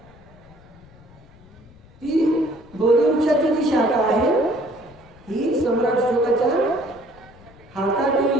ती बोधिवृक्षाची जी शाखा आहे ही सम्राट अशोकाच्या हातात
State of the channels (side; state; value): left; noise; rumble, 25 dB below the sound